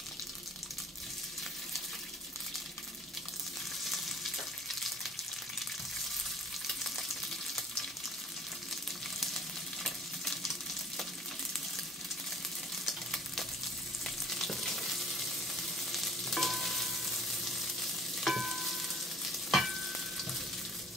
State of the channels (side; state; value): both; normal; correlation 0.51